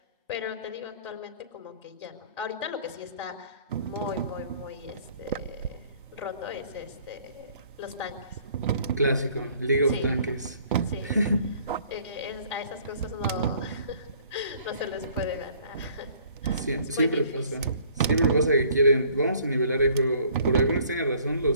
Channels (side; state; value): both; inverted; correlation -0.57